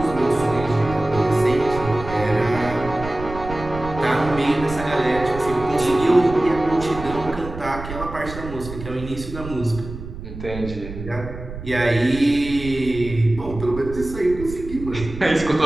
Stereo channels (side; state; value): right; noise; rumble, 11 dB below the sound